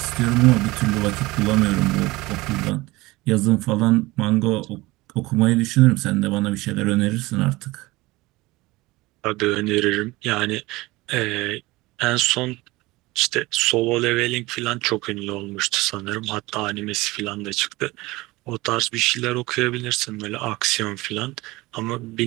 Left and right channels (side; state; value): left; quieter; 20.8 dB